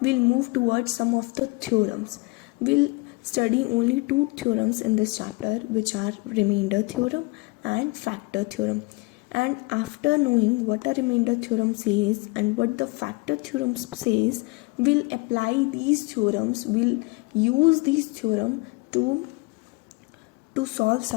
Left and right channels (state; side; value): quieter; right; 26.1 dB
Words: we'll move towards some of the theorems. We'll study only two theorems in this chapter, which are remainder theorem and factor theorem. And after knowing what a remainder theorem says and what the factor theorem says, we'll apply these theorems, we'll use these theorems to solve